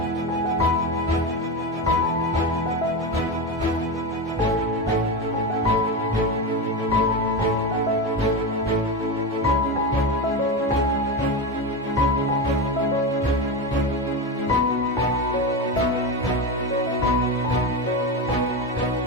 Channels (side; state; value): both; normal; correlation 0.18